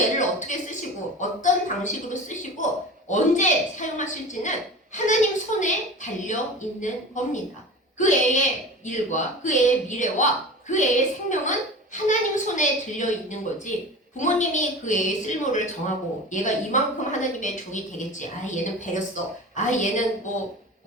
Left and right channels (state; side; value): normal; both; correlation 0.34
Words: 어떻게 쓰시고 어떤 방식으로 쓰시고 언제 사용하실지는 하나님 손에 달려있는 겁니다. 그 애의 일과 그 애의 미래와 그 애의 생명은 하나님 손에 들려있는 거지, 부모님이 그 애의 쓸모를 정하고 얘가 이만큼 하나님의 종이 되겠지, 얘는 배렸어, 얘는